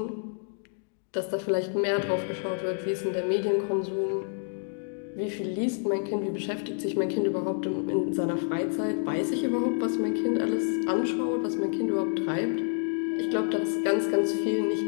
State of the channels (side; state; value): right; silent; 59 dB below the other